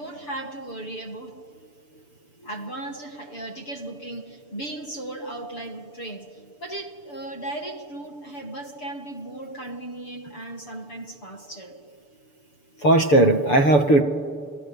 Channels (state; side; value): late; right; 6.9 ms